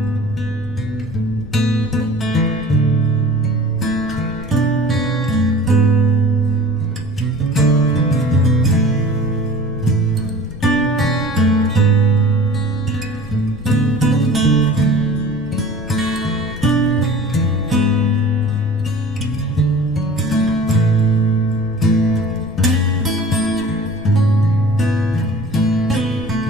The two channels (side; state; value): left; noise; rumble, 15 dB below the sound